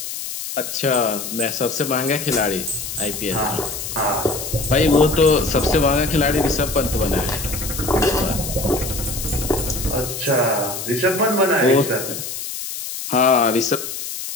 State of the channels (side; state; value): left; noise; hiss, 7 dB below the sound